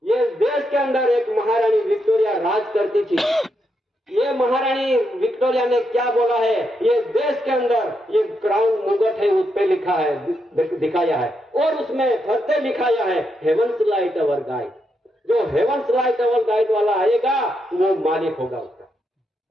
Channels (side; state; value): both; normal; correlation 0.81